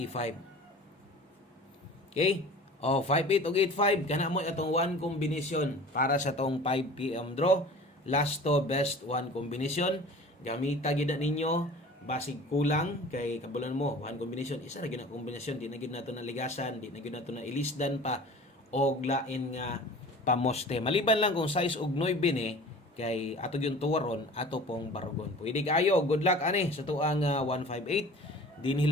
Okay, o 58 og 85 kana mo atong one combination para sa tong 5 PM draw. Last to best one combination, gamita gid ninyo basig kulang kay kabulan mo one combination, isa ra gyud na kombinasyon, di na gyud nato na ligasan, di na gyud nato na ilisdan pa og lain nga pamoste. Maliban lang kung size og 9 ni kay ato yung tuwaron ato pong barugon. Pwede kayo, good luck ani sa tuang 158. Dinhi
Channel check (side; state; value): both; normal; correlation 0.42